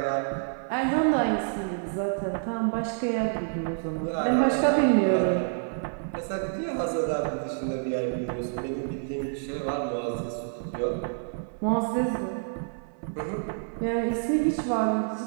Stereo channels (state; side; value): silent; left; 58 dB below the other